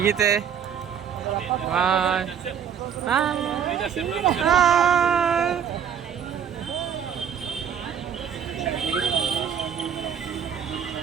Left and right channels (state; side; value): quieter; left; 8.3 dB